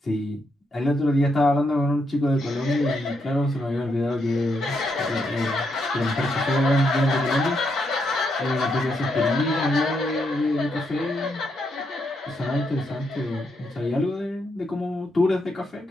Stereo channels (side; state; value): both; normal; correlation 0.79